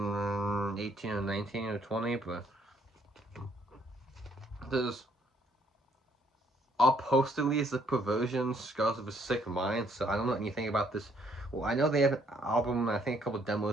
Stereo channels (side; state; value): both; normal; correlation 0.67